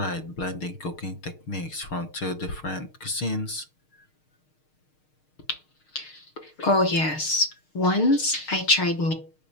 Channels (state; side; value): late; right; 6.5 ms